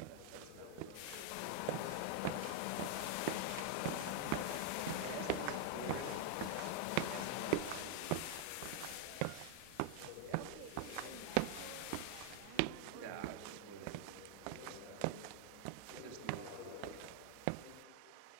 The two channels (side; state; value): both; different; correlation 0.00